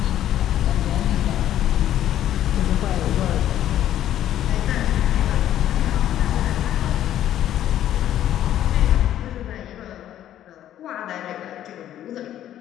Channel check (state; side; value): quieter; right; 11.8 dB